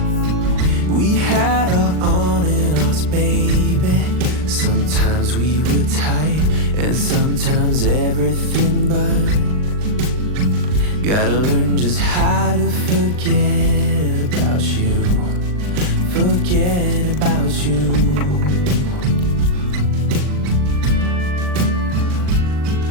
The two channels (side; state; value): left; late; 39 ms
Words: We had our on and offs, baby. Sometimes we were tight, and sometimes everything but. Gotta learn just how to forget about you. Forget about you.